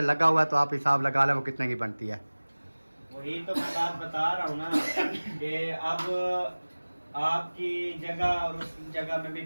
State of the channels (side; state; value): both; inverted; correlation -1.00